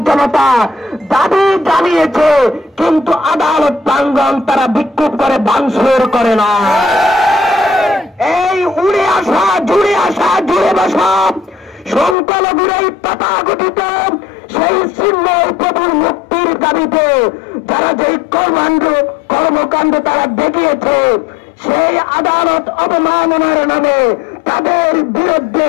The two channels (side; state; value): right; drops out; at 12.2 s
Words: জনতা দাবি জানিয়েছে, কিন্তু আদালত প্রাঙ্গণ তারা বিক্ষোভ করে ভাঙচুর করে না। এই উড়ে আসা জুড়ে বসা সংখ্যালঘুর এই তথাকথিত সেই চিহ্নের প্রভুর মুক্তির দাবিতে যারা যে কর্মকাণ্ড তারা দেখিয়েছে, সেই আদালত অবমাননার নামে তাদের বিরুদ্ধে